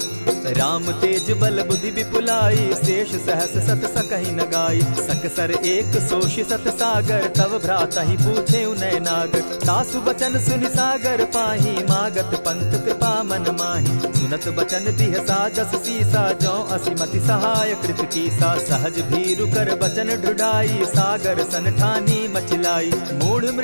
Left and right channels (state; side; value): inverted; both; correlation -1.00